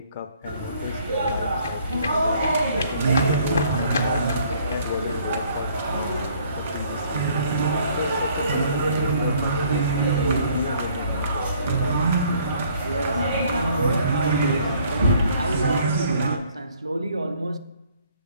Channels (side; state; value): both; inverted; correlation -0.61